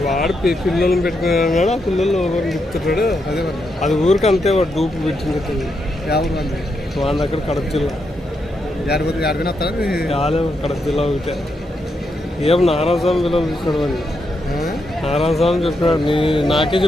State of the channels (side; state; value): both; normal; correlation 0.82